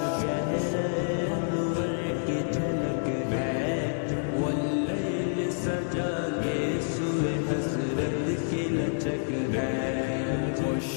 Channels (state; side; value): silent; right; 59 dB below the other